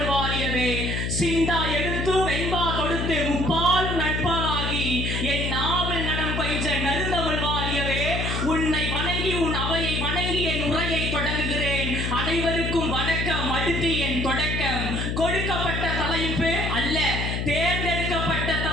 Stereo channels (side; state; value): left; noise; hum, 1 dB below the sound